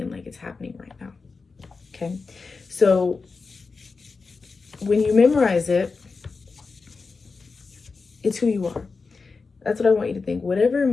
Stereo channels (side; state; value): right; quieter; 4.4 dB